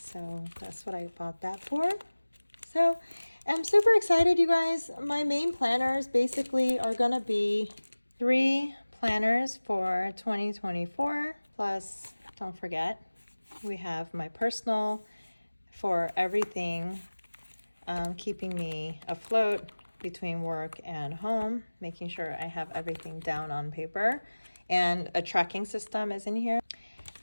that's what I bought that for. So I'm super excited, you guys. My main planners basically are gonna be 3 planners for 2024. Plus, don't forget, we have my personal for everything, keeping me afloat between work and home, making sure I have everything down on paper, and a tracking system is in here.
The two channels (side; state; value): both; inverted; correlation -1.00